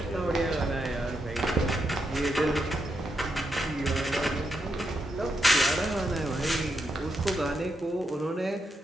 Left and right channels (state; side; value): normal; both; correlation 0.82